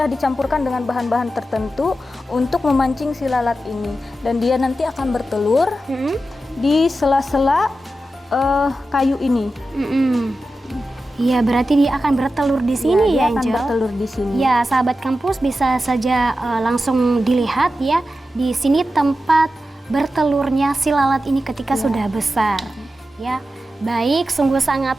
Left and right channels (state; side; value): normal; both; correlation 0.91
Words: dicampurkan dengan bahan-bahan tertentu untuk memancing si lalat ini, dan dia nanti akan bertelur di sela-sela kayu ini. Iya, berarti dia akan bertelur di sini dia ya, akan Angel? bertelur di sini. Ya, sahabat kampus bisa saja langsung dilihat ya, di sini tempat bertelurnya si lalat ini ketika sudah besar. Ya, baik, sungguh